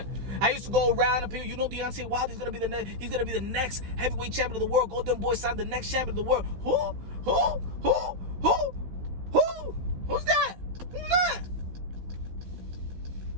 I used to go around and people, Deontay Wilder is gonna be the next heavyweight champion of the world. Golden Boy signed the next champion of the world. Who's that? Who's that?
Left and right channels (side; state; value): left; late; 16 ms